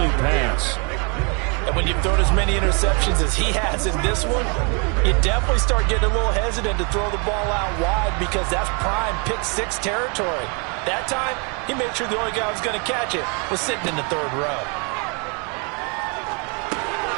pass. And when you've thrown as many interceptions as he has in this one, you definitely start getting a little hesitant to throw the ball out wide because that's prime pick 6 territory. That time, he made sure the only guy who was going to catch it was sitting in the 3rd row.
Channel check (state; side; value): quieter; left; 34.8 dB